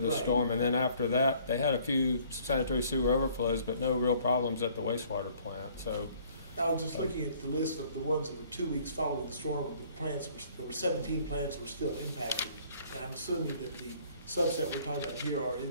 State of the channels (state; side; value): inverted; both; correlation -0.58